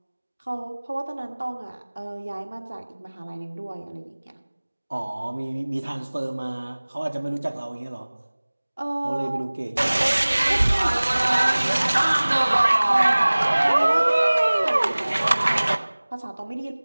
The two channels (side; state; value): both; inverted; correlation -1.00